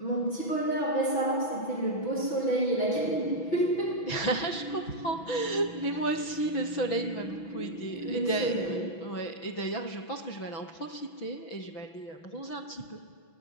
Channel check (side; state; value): right; late; 6.1 ms